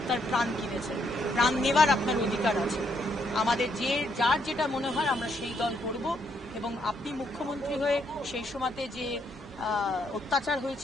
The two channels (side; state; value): both; normal; correlation 0.74